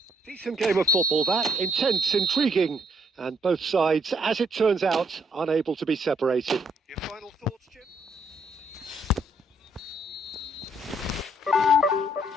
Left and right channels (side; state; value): both; normal; correlation 0.69